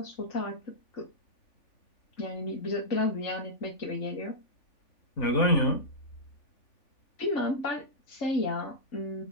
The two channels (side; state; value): right; late; 3.5 ms